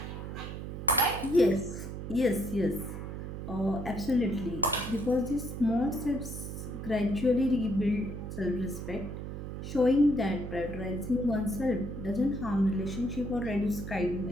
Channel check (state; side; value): noise; right; hum, 7 dB below the sound